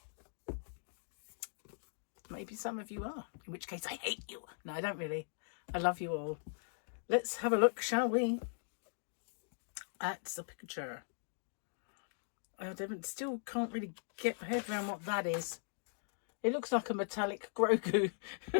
Maybe some of you are, in which case I hate you. No, I don't really. I love you all. Let's have a look, shall we, at the picture. I still can't really get my head around what that is. It looks like a metallic Grogu.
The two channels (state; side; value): silent; right; digital silence